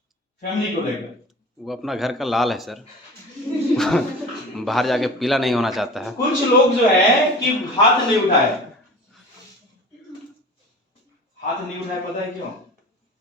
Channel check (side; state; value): both; normal; correlation 0.38